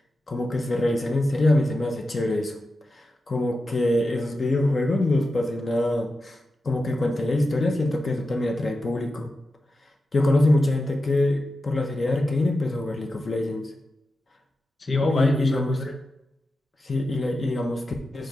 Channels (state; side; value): normal; both; correlation 0.91